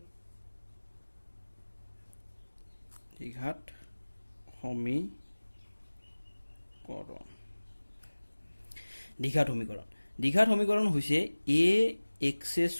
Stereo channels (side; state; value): both; inverted; correlation -1.00